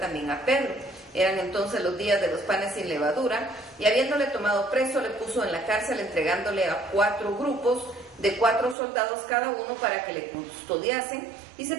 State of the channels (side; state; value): left; drops out; at 8.8 s